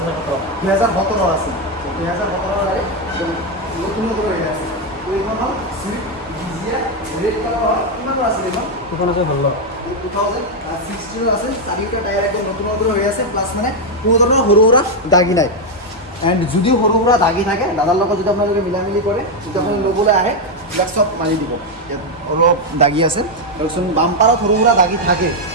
2017 আছিল 2017 গাড়ী নতুন নতুন হৈ আছে তো এইখন হ'ল চুইফ্ট ডিজিয়াৰ ৰেড কালাৰ কিমানৰ আছিল এইখন এখন আছে ভাল 2016 আছে চাৰিটা টায়াৰ একদম নতুন নতুন হৈ আছে প্লাছ মানে কোনো ধৰণৰ সৰু সুৰা দাগি নাই এণ্ড যদিও সৰু সুৰা দাগি থাকে দাদাৰ লগত যদি আপোনালোকে মিলামিলি কৰে যদি আপুনি ল'বলৈ আহে এইবিলাক চব মাৰি দিব ইয়াত অলপ দাগি আছে তাৰপিছত বাম্পাৰত সৰু সুৰা দাগি থাকে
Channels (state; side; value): normal; both; correlation 0.03